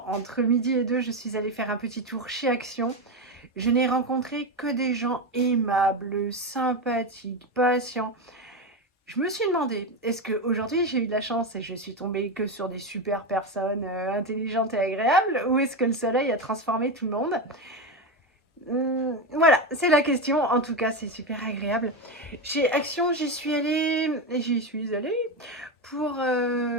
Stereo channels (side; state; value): both; normal; correlation 0.14